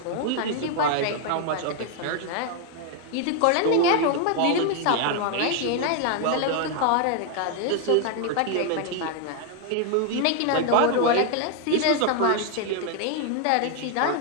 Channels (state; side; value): different; both; correlation 0.00